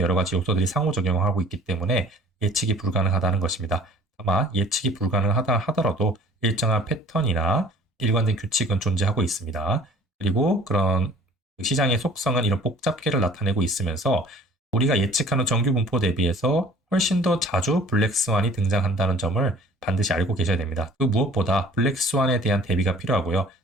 가지 요소들이 상호작용을 하고 있기 때문에 예측이 불가능하다는 것입니다. 다만 예측이 불가능하다 하더라도 일정한 패턴이나 일관된 규칙은 존재하고 있습니다. 그리고 그런 시장의 속성은 이런 복잡계를 나타내고 있으면서 우리가 예측하는 정규 분포 대비해서 훨씬 더 자주 블랙스완이 등장한다는 점을 반드시 알고 계셔야 됩니다. 그 무엇보다 블랙스완에 대한 대비가 필요하고요.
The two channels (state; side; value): normal; both; correlation 0.51